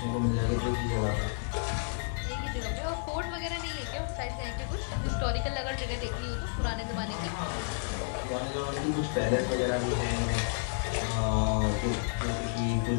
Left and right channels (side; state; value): right; silent; digital silence